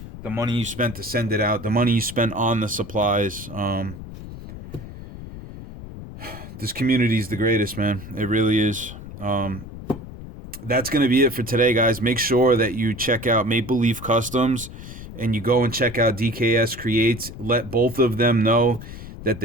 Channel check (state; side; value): noise; left; rumble, 13 dB below the sound